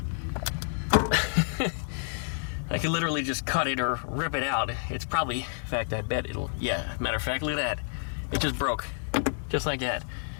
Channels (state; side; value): silent; right; 58 dB below the other